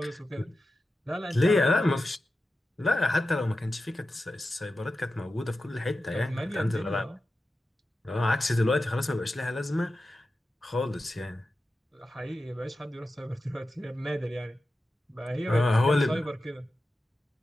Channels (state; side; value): normal; both; correlation 0.92